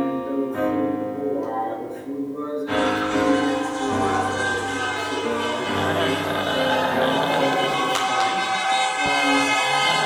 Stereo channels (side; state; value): both; identical; correlation 1.00